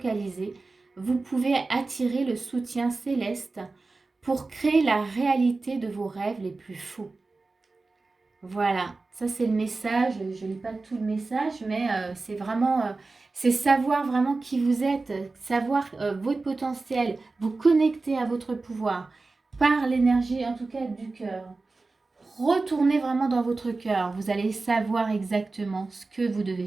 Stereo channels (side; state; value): left; quieter; 3.6 dB